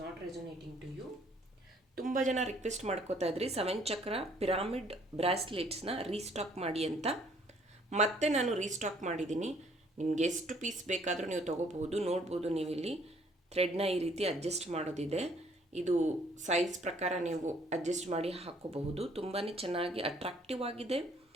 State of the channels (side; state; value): both; normal; correlation 0.62